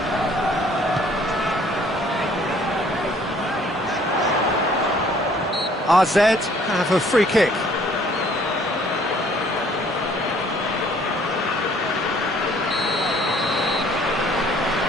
AZ have a free kick.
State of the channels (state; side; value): normal; both; correlation 0.59